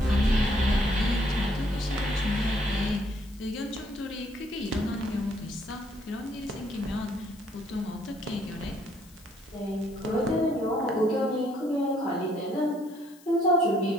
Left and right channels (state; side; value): noise; left; hiss, 25 dB below the sound